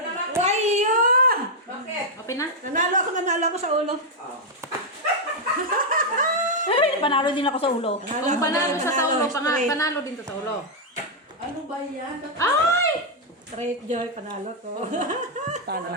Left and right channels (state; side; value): normal; both; correlation -0.02